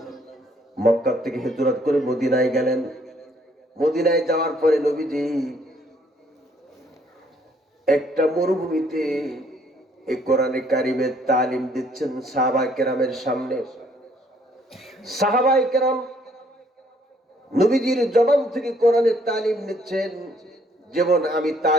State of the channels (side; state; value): both; normal; correlation 0.65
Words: মক্কা থেকে হিজরত করে মদিনায় গেলেন। মদিনায় যাওয়ার পরে নবীজি একটা মরুভূমিতে এই কোরআনে কারীমের তালিম দিচ্ছেন সাহাবায়ে কেরামের সামনে। সাহাবায়ে কেরাম নবীজির জবান থেকে কোরআনের তালিম নিচ্ছেন। যেমন আমি